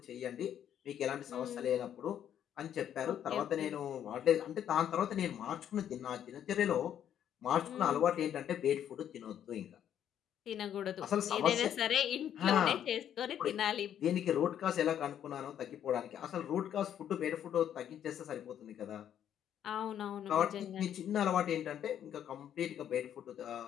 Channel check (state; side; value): quieter; right; 9.9 dB